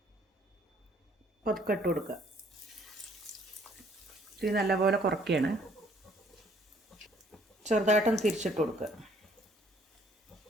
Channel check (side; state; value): both; normal; correlation 0.62